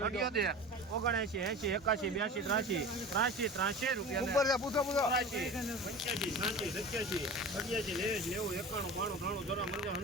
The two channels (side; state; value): both; normal; correlation 0.35